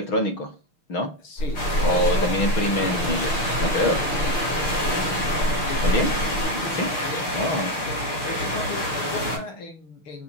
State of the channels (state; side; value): late; right; 6.6 ms